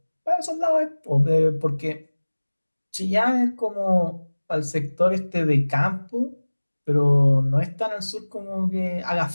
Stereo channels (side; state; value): both; inverted; correlation -1.00